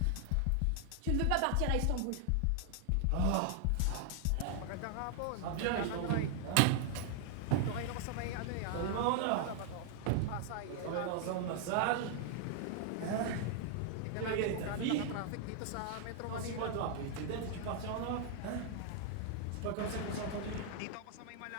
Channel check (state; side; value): different; both; correlation 0.00